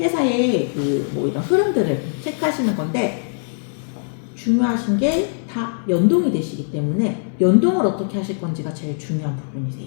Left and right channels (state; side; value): silent; right; 65 dB below the other